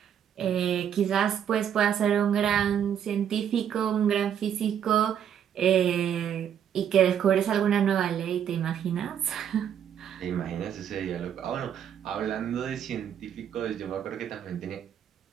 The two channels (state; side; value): quieter; left; 9.1 dB